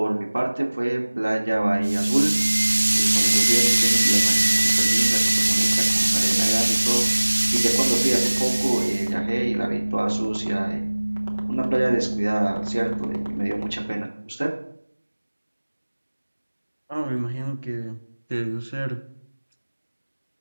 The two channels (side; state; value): both; inverted; correlation -1.00